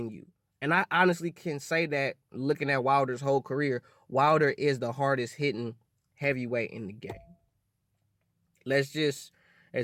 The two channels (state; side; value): identical; both; correlation 1.00